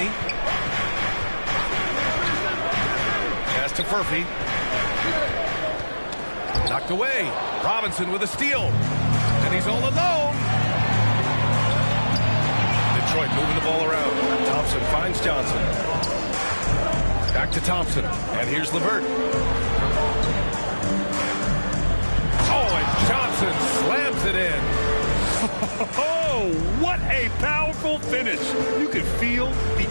Pass to Furphy. Knocked away. Robinson with a steal. And he's all alone. Detroit moving the ball around. Thompson finds Johnson. Back to Thompson. And here's LeVert. Oh, and Johnson slams it in. Oh, what a powerful finish. You can feel the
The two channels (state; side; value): inverted; both; correlation -1.00